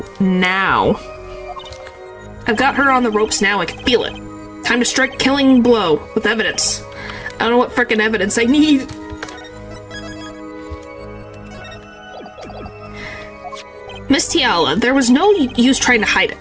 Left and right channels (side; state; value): both; identical; correlation 1.00